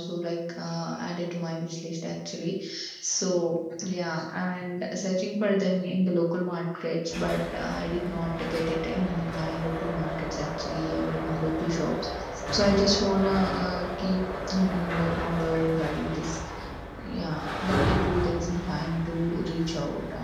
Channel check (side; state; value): both; identical; correlation 1.00